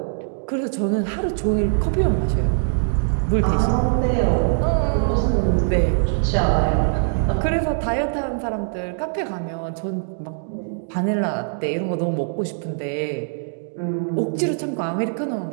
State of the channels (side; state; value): left; silent; digital silence